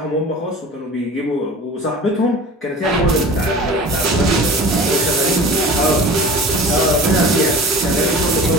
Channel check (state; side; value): normal; both; correlation 0.39